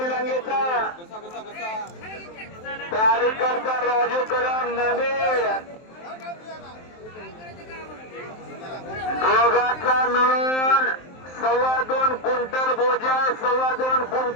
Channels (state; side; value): late; right; 23 ms